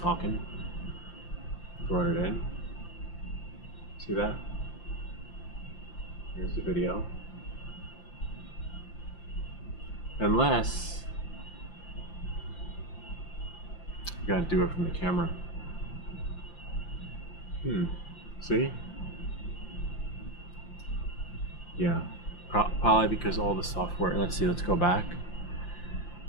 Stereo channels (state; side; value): late; right; 5.8 ms